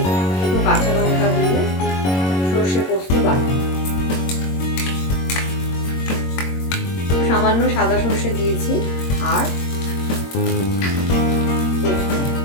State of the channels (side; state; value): right; late; 22 ms